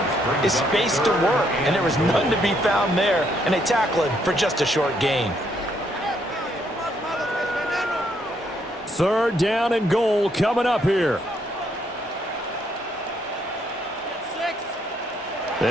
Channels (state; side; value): normal; both; correlation 0.72